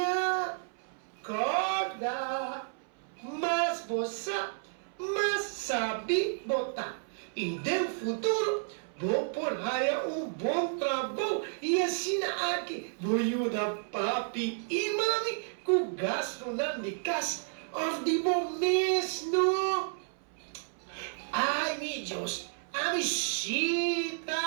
Corda, mas você, sabe botar. E no futuro, vou por aí bom trabalho e assim aqui vou ajudar papi e mami com gasto na casa de mês, não? Ai, meu Deus, a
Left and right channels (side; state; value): left; silent; 57 dB below the other